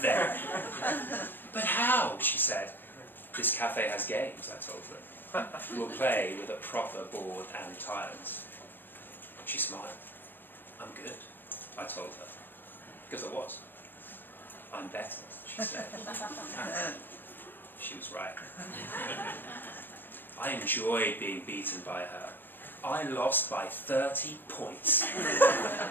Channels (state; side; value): late; right; 0.094 ms